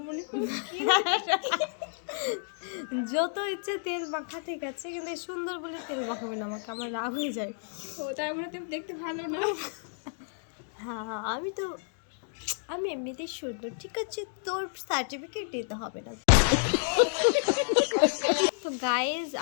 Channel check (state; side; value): silent; right; digital silence